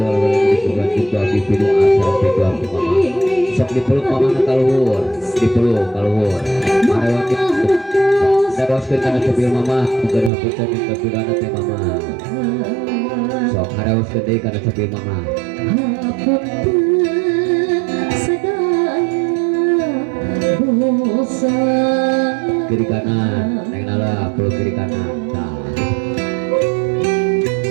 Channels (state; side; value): drops out; left; at 10.3 s